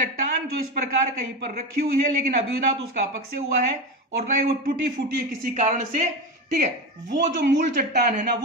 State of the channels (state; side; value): normal; both; correlation 0.19